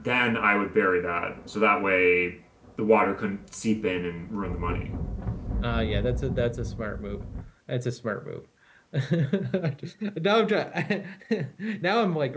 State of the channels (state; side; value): identical; both; correlation 1.00